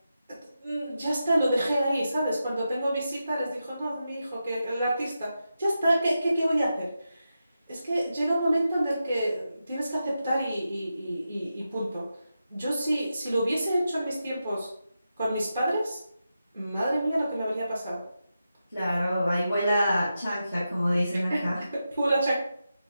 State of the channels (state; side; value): inverted; both; correlation -0.89